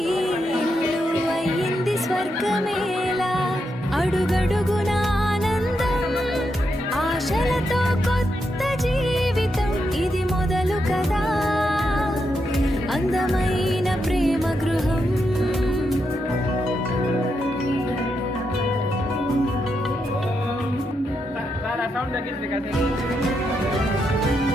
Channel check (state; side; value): normal; both; correlation 0.83